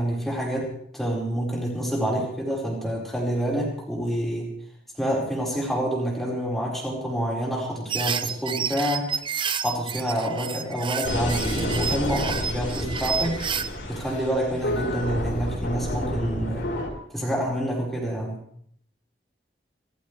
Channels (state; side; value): normal; both; correlation 0.58